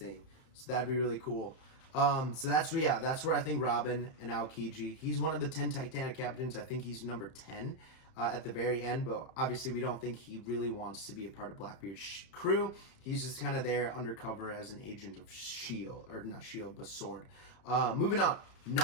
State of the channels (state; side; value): late; right; 31 ms